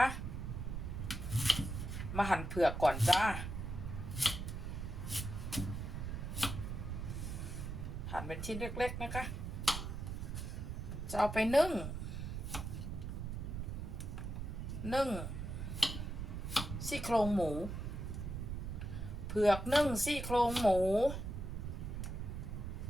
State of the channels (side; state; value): right; noise; rumble, 5 dB below the sound